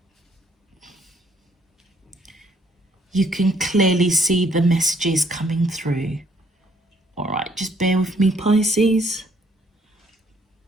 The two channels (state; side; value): normal; both; correlation 0.66